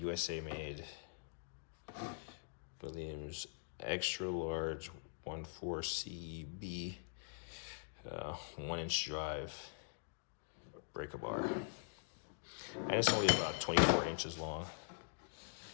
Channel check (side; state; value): right; silent; digital silence